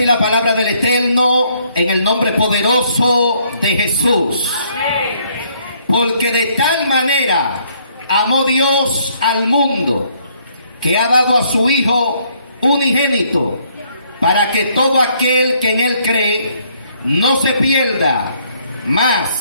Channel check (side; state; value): both; inverted; correlation -0.67